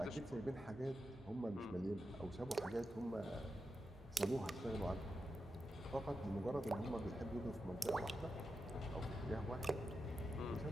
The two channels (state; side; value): normal; both; correlation 0.89